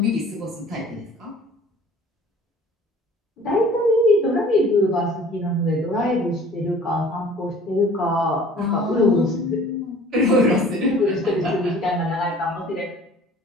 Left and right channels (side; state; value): both; normal; correlation 0.49